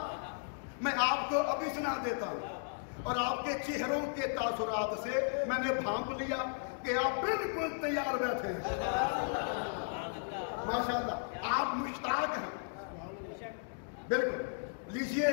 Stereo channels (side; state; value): right; silent; digital silence